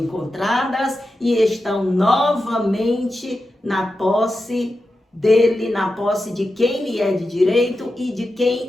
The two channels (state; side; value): normal; both; correlation 0.90